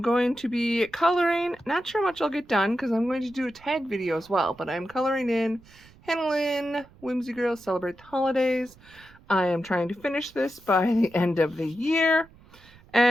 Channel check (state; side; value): noise; right; rumble, 25 dB below the sound